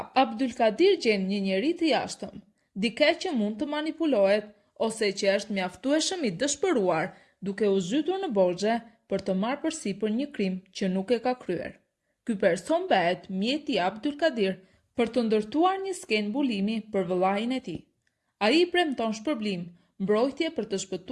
Abdulkadir gjen një njeri të jashtëm, dikë që mund të manipulohet ose që është mjaftueshëm i dëshpëruar duke u zhytur në borxhe për të marrë përsipër një krim që nuk e ka kryer. Ky person bëhet mjeti i Abdulkadir për të ndërtuar një skenë mbulimi për vëllain e tij. Ai premton shpërblim, mbrojtje për të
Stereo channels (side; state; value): both; identical; correlation 1.00